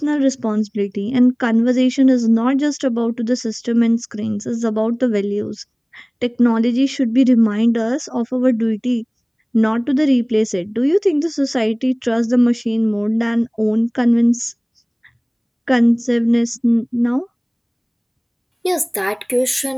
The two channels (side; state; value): both; identical; correlation 1.00